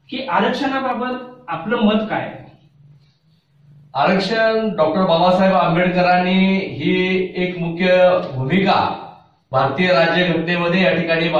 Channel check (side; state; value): both; identical; correlation 1.00